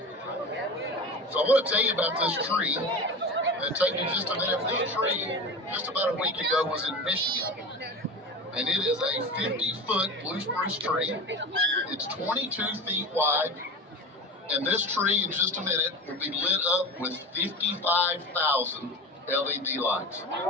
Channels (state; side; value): normal; both; correlation 0.29